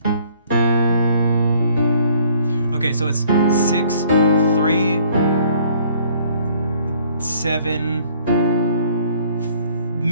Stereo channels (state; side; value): inverted; both; correlation -0.60